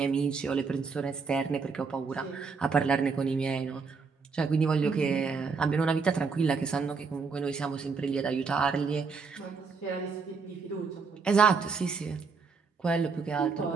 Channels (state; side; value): quieter; left; 5.0 dB